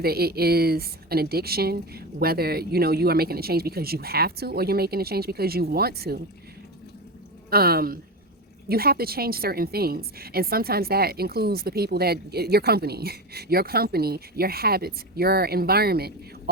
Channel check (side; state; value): both; normal; correlation 0.20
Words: it is an addiction, whether, you are making a change because you have to, or you're making a change because you want to. You have to change certain things. And sometimes that includes the people your company, your habits, your environment,